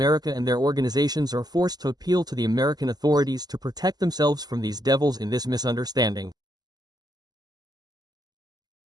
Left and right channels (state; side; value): late; left; 0.20 ms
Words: and their organizations are forced to appeal to the American authorities to protect themselves from these devils in this misunderstanding.